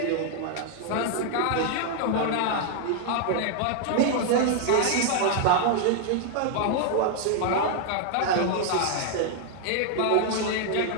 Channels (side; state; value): both; different; correlation 0.00